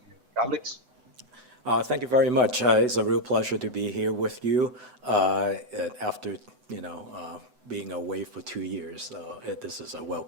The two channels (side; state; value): left; late; 7.9 ms